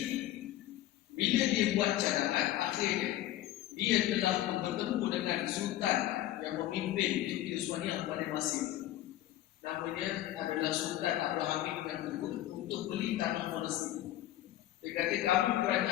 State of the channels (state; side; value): quieter; right; 14.0 dB